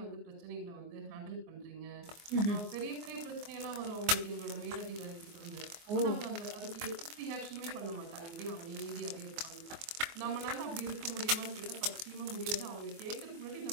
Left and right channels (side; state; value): left; late; 24 ms